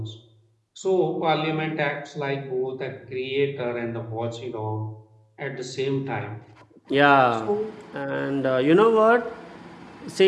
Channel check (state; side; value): identical; both; correlation 1.00